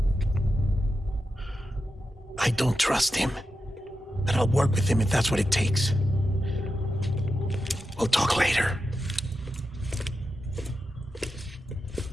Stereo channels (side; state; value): both; normal; correlation 0.89